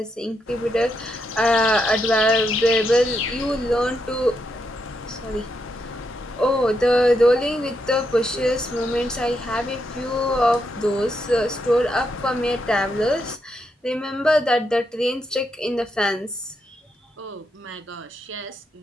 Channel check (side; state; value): both; normal; correlation 0.81